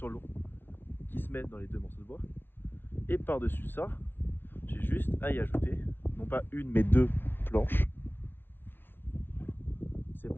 l'eau qui se met dans les deux morceaux de bois. Et par dessus ça, j'ai juste à y ajouter non pas une mais deux planches. Ces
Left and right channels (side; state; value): right; late; 0.10 ms